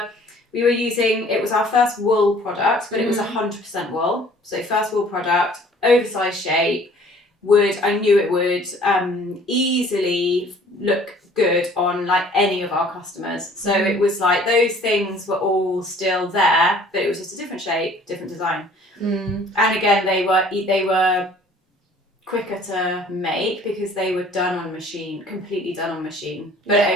using, it was our first wool product, but it was 100% wool. So first wool product, oversized shape. I knew it would easily look good on like any of our customers. So it was like those things were all still there, but it was just a different shape, different design. And again, they were quicker to make because they were done on machine, completely done on machine.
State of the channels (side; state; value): both; normal; correlation 0.53